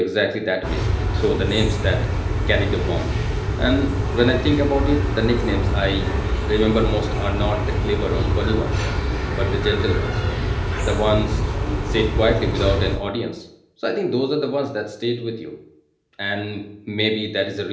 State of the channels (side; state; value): both; identical; correlation 1.00